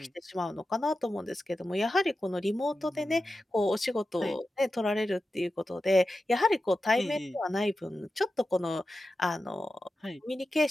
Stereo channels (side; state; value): both; normal; correlation 0.92